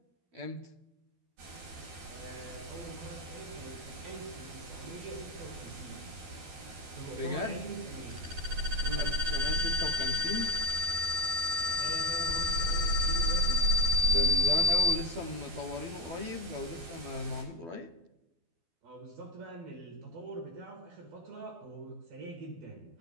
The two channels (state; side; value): late; left; 12 ms